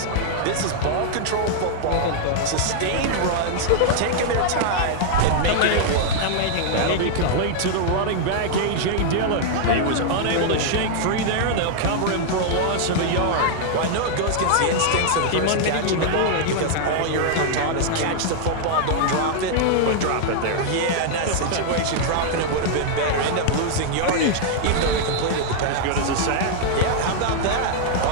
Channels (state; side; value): different; both; correlation -0.01